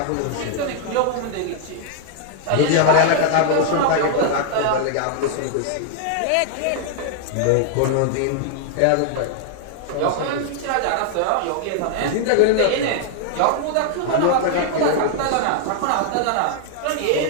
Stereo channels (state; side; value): different; both; correlation -0.01